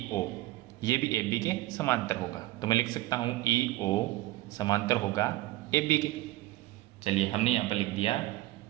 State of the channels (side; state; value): left; quieter; 17.5 dB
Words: ये भी AB के समांतर होगा। तो मैं लिख सकता हूँ EO समांतर होगा AB के। चलिए हमने यहाँ पर लिख दिया